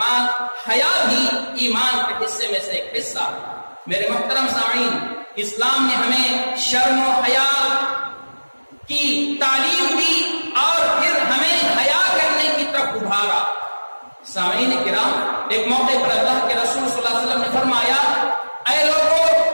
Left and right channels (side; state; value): both; inverted; correlation -1.00